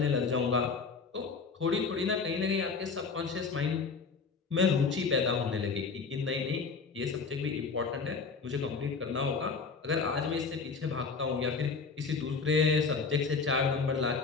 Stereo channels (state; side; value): quieter; right; 4.8 dB